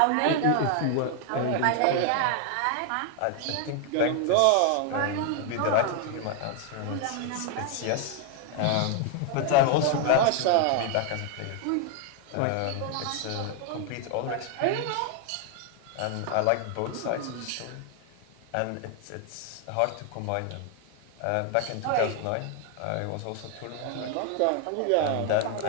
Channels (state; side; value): different; both; correlation 0.01